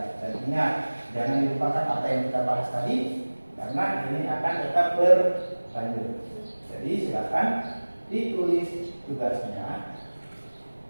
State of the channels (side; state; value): both; inverted; correlation -1.00